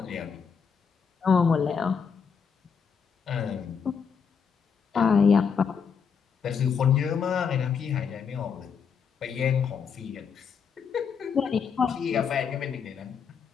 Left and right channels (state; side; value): quieter; right; 6.4 dB